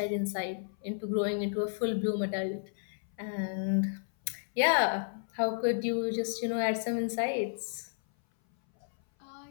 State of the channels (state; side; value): silent; right; 56 dB below the other